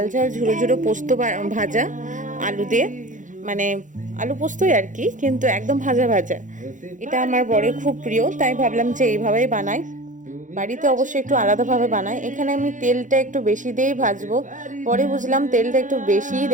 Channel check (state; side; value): late; left; 0.37 ms